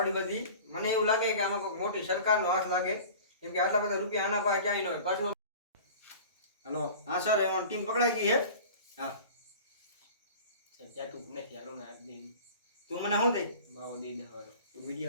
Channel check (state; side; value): inverted; both; correlation -0.40